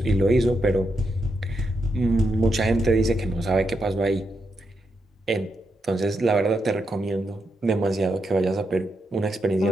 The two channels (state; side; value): normal; both; correlation 0.83